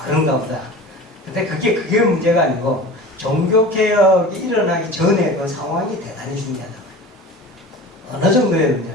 그런가 보다. 근데 그게 문제가 아니고 종교개혁이 일어나기 전에 그 상황이 대단히 중요하다. 어느 정도에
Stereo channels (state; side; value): normal; both; correlation 0.37